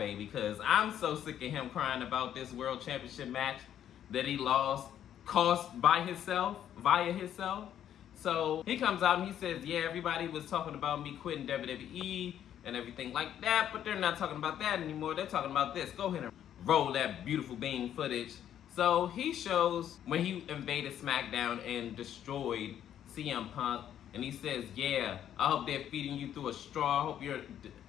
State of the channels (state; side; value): quieter; right; 10.3 dB